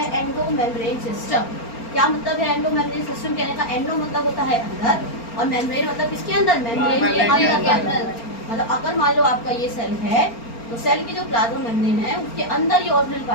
एंडो मेम्ब्रेन सिस्टम। क्या मतलब है एंडो मेम्ब्रेन सिस्टम कहने का? एंडो मतलब होता है अंदर और मेम्ब्रेन मतलब किसके अंदर? मेम्ब्रेन के अंदर के अंदर। मतलब अगर मान लो आपका ये सेल है तो सेल की जो प्लाज्मा मेम्ब्रेन है उसके अंदर ये ऑर्गेनेल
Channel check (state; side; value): late; right; 4.4 ms